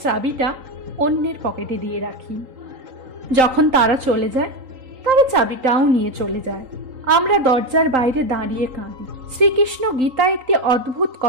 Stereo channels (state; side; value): late; left; 3.8 ms